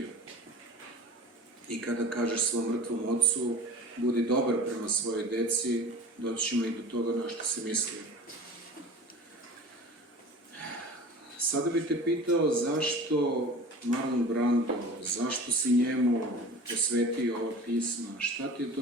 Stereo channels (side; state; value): both; normal; correlation 0.38